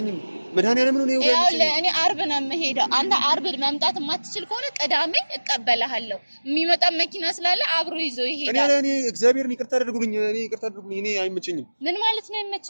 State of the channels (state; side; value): inverted; both; correlation -1.00